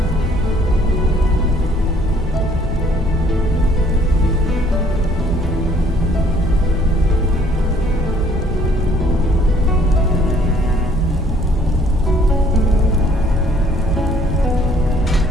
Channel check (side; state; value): both; normal; correlation 0.61